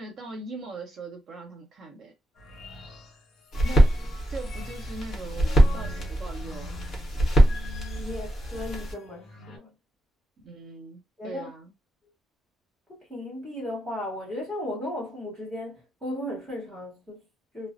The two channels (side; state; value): both; normal; correlation 0.87